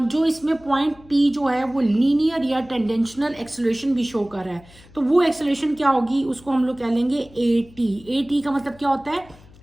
इसमें पॉइंट P जो है वो लीनियर या टेंडेंशनल एक्सेलरेशन भी शो कर रहा है। तो वो एक्सेलरेशन क्या होगी, उसको हम लोग कह लेंगे AT का मतलब क्या होता है,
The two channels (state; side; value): noise; left; hum, 24 dB below the sound